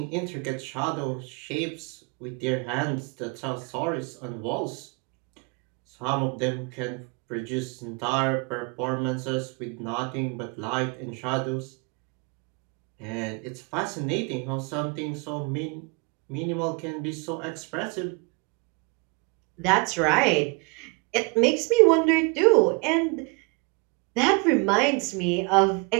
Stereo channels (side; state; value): left; quieter; 31.4 dB